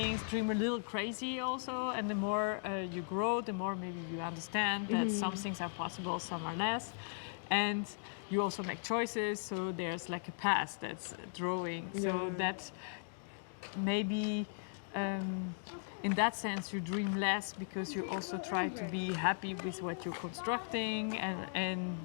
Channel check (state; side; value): silent; right; digital silence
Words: dream a little crazy also, and the more you grow, the more maybe you understand that some things are possible, some are less, and you also make choices, so there's like a path that's drawing, so that maybe in that sense you dream less, because you also try to be happy with what you're constructing, and